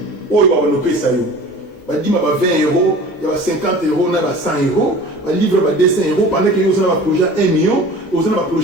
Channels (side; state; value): both; normal; correlation 0.41